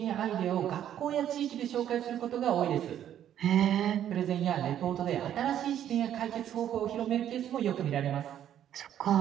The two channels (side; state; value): left; quieter; 10.6 dB